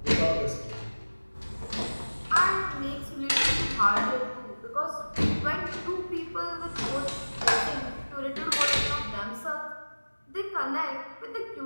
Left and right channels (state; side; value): inverted; both; correlation -1.00